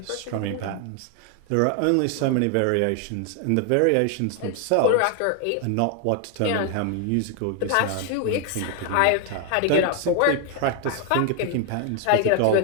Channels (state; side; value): different; both; correlation 0.01